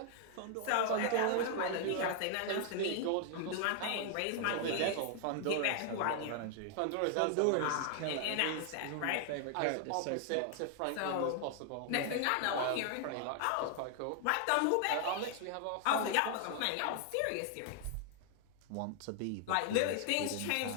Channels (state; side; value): different; both; correlation 0.00